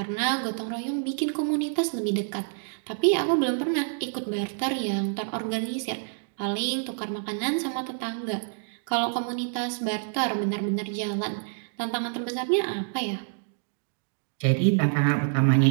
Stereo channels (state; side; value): silent; left; digital silence